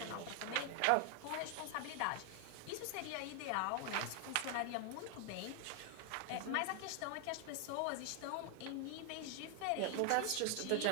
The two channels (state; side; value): different; both; correlation 0.00